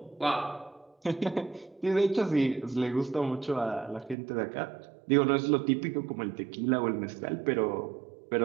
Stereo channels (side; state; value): left; drops out; at 4.2 s